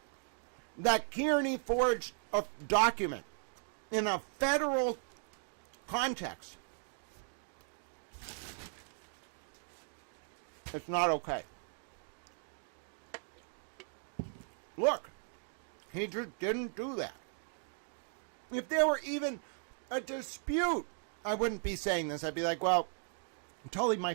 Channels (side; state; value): left; silent; 53 dB below the other